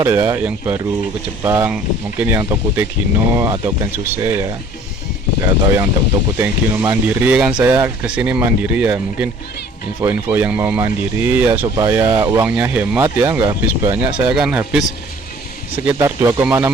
ya, yang baru ke Jepang, mungkin yang Tokute Gino atau Kensuse ya, atau yang Tokute Gino mandiri, kan saya kesini mandiri ya, mungkin info-info yang mau mandiri ya supaya uangnya hemat ya, nggak habis banyak. Saya kan habis sekitar 2,6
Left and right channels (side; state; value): both; normal; correlation 0.53